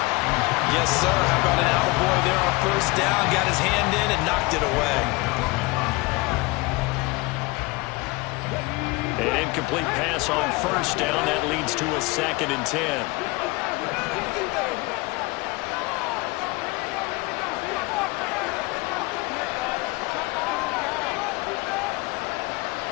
Yes, sir. How about an attaboy there on first down? Got his hand in and knocked it away. An incomplete pass on first down. That leads to a 2nd and 10.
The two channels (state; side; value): quieter; right; 24.1 dB